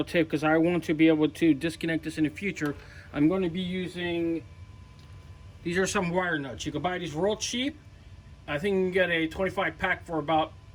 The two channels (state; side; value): identical; both; correlation 1.00